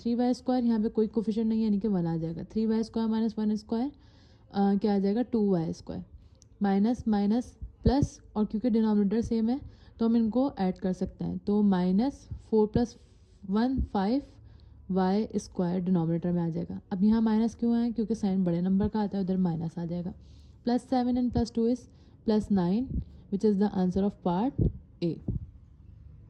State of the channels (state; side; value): identical; both; correlation 1.00